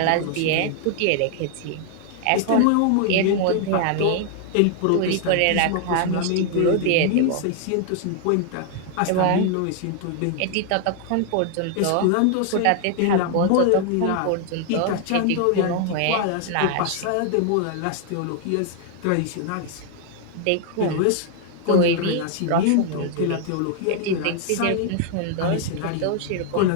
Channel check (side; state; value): both; different; correlation 0.00